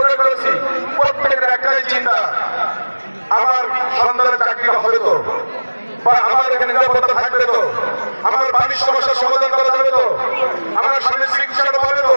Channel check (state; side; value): inverted; both; correlation -1.00